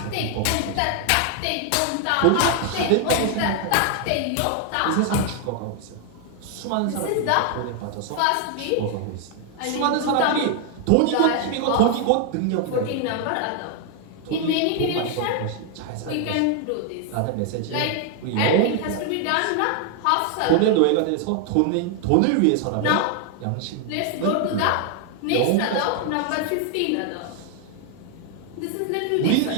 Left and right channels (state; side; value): different; both; correlation 0.00